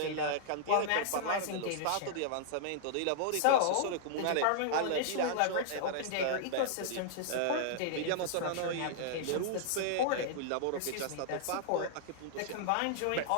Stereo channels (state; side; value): different; both; correlation -0.01